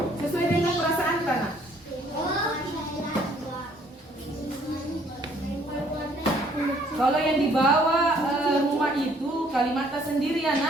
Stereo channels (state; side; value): normal; both; correlation 0.62